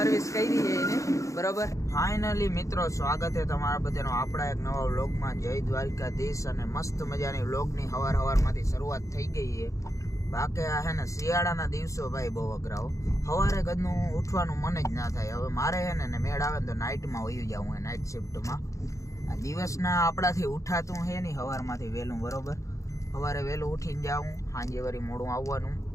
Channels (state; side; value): late; right; 0.15 ms